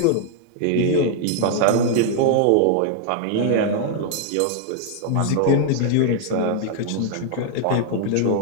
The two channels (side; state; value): both; different; correlation 0.00